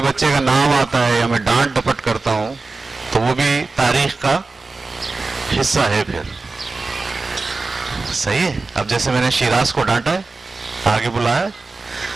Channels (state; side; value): quieter; left; 3.7 dB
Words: बच्चे का नाम आता है या मैं डांट डपट करता हूं तो वो भी तारीख का हिस्सा है फिर, सही है। अब जैसे मैंने शिराज को डांटा है, आगे बुलाया,